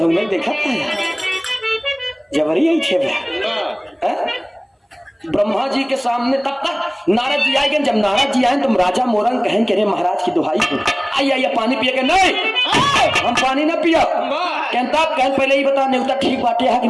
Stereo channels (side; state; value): both; identical; correlation 1.00